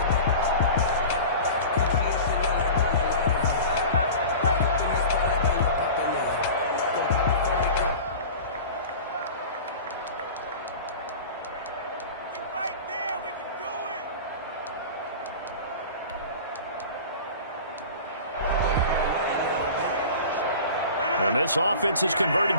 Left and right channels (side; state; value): both; inverted; correlation -0.36